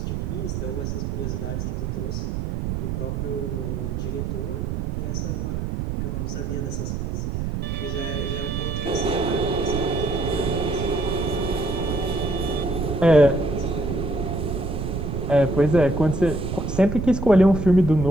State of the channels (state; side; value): noise; right; rumble, 2 dB below the sound